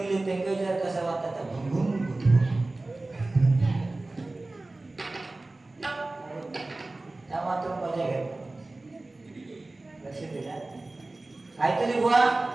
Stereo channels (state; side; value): quieter; left; 3.0 dB